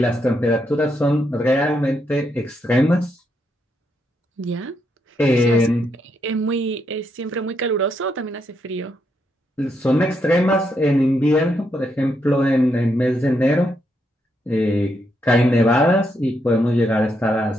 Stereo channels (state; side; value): normal; both; correlation 0.79